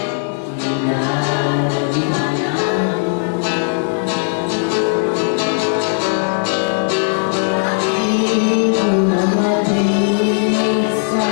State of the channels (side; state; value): right; silent; digital silence